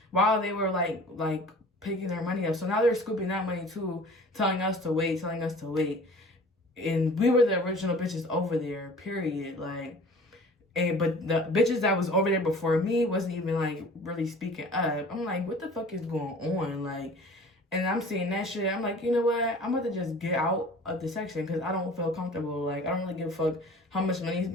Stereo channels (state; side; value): normal; both; correlation 0.45